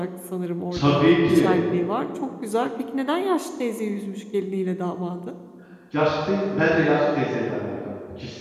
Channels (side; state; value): both; identical; correlation 1.00